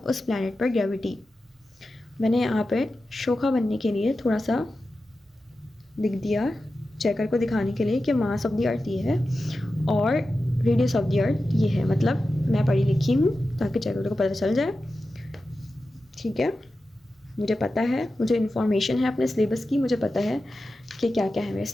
प्लैनेट पर ग्रेविटी। मैंने यहाँ पे शोखा बनने के लिए थोड़ा सा लिख दिया चेकर को दिखाने के लिए कि मास ऑफ द अर्थ ये है और रेडियस ऑफ द अर्थ ये है, मतलब मैं पढ़ी लिखी हूँ ताकि चेकर को पता चल जाए, ठीक है। मुझे पता है, मुझे इन्फॉर्मेशन है अपने सिलेबस की, मुझे पता है कि क्या क्या है मेरे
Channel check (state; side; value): normal; both; correlation 0.92